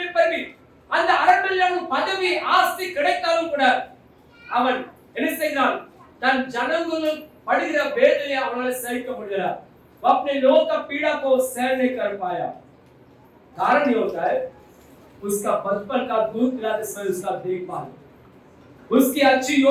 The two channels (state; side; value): identical; both; correlation 1.00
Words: पर भी, அந்த அரண்மனையில பதவி ஆஸ்தி கிடைத்தாலும் கூட அவன் என்ன செய்கிறான்? தன் ஜனங்கள் படுகிற வேதனையை அவனால சகிக்க முடியல. वो अपने लोगों का पीड़ा को सहन नहीं कर पाया। कारण ये होता है उसका बचपन का दूध पिलाते समय उसका देखभाल, उसकी अच्छी